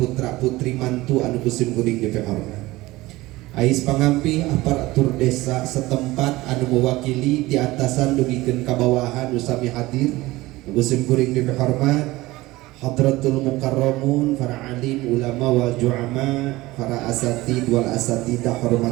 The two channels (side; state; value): left; quieter; 19.1 dB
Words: putra putri mantu anu kusim kuring lebih hormat. Ais pangampi aparatur desa setempat anu mewakili di atasan dugikeun ka bawahan nu sami hadir kusim kuring dihormat hadratul mukarramun para alim ulama wal juama para asatid wal asatidah